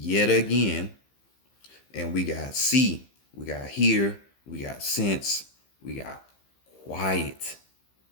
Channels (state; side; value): late; right; 15 ms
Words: again, and we got see, we got hear, we got sense, we got quiet,